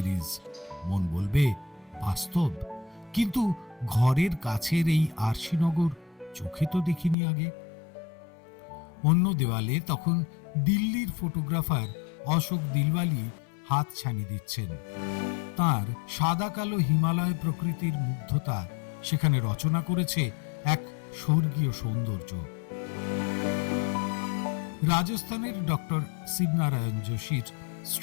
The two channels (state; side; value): drops out; right; at 7.2 s